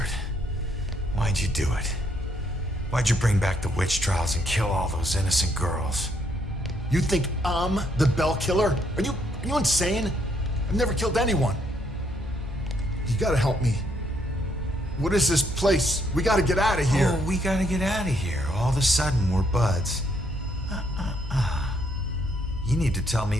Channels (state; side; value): normal; both; correlation 0.71